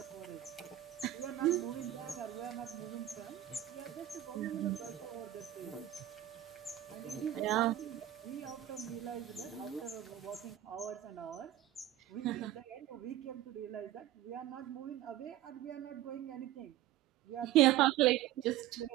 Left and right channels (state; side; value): quieter; left; 13.1 dB